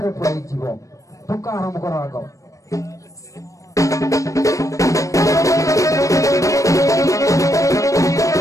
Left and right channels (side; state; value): right; late; 0.16 ms